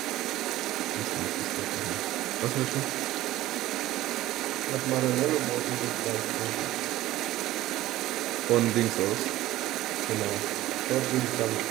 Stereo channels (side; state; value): left; quieter; 15.6 dB